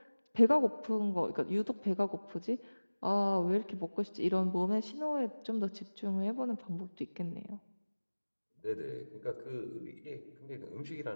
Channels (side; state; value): both; inverted; correlation -1.00